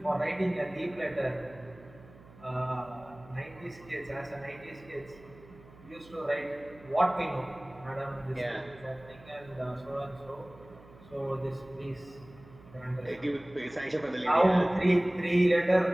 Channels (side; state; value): right; noise; hum, 22 dB below the sound